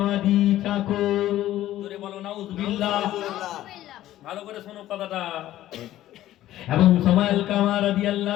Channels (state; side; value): quieter; right; 13.8 dB